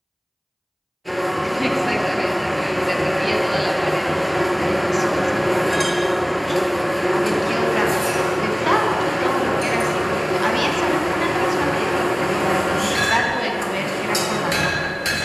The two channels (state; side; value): identical; both; correlation 1.00